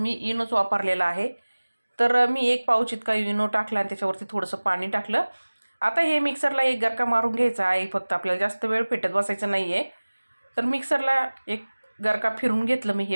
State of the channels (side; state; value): both; inverted; correlation -1.00